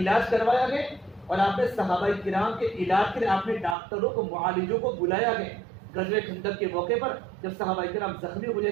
کروایا گیا، اور آپ نے صحابہ کرام کے علاج کے لیے آپ نے ڈاکٹروں کو، معالجوں کو بلایا گیا۔ غزوہ خندق کے موقع پر جب صحابہ کرام زخمی ہو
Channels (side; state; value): left; drops out; at 3.8 s